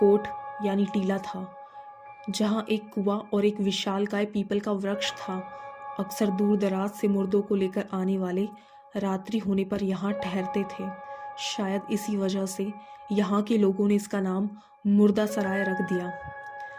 यानी टीला था, जहां एक कुआं और एक विशालकाय पीपल का वृक्ष था। अक्सर दूर दराज से मुर्दों को लेकर आने वाले रात्रि होने पर यहाँ ठहरते थे। शायद इसी वजह से यहाँ के लोगों ने इसका नाम मुर्दा सराय रख दिया।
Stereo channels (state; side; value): identical; both; correlation 1.00